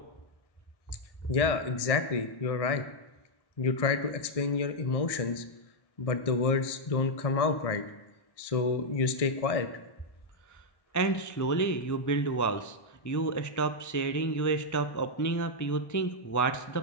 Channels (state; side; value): late; right; 1.6 ms